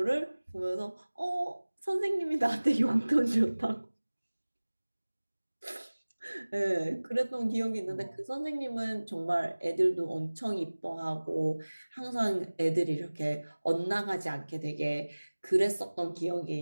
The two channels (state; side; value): inverted; both; correlation -1.00